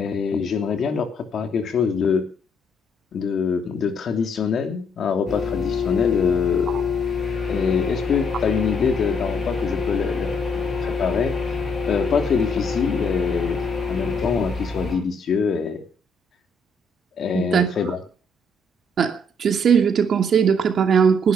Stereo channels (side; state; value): both; normal; correlation 0.69